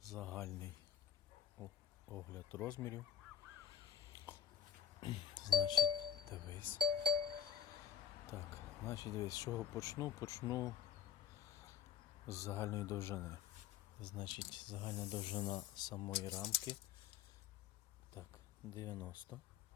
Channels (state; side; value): quieter; right; 8.3 dB